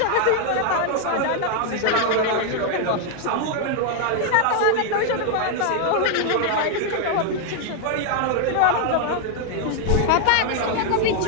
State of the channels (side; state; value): both; different; correlation 0.00